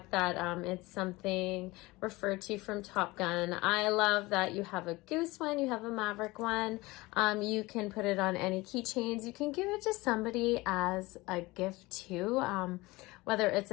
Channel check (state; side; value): quieter; right; 21.5 dB